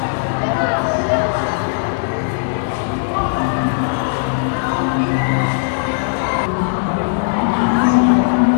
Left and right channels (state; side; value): silent; right; digital silence